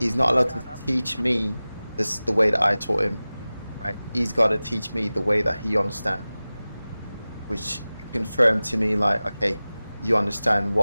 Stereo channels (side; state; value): both; inverted; correlation -0.97